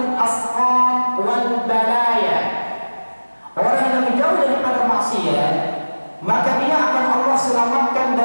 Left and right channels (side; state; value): both; inverted; correlation -1.00